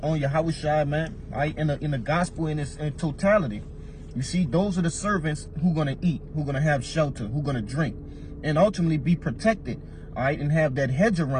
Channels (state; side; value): identical; both; correlation 1.00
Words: on Yahweh, man, all right, in the gospel in its totality. You see, those are the servants who going to eat, who going to have shelter, who going to drink, and ultimately be protected, all right, and have that hedge